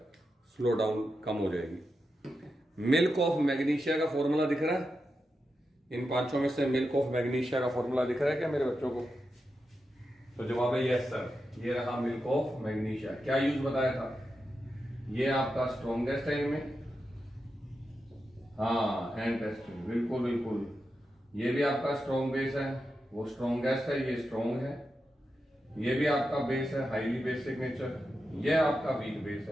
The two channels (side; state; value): both; normal; correlation 0.88